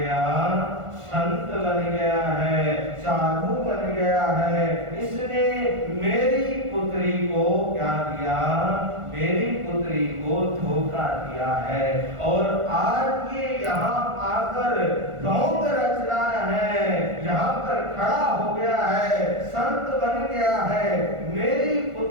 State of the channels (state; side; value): late; left; 1.5 ms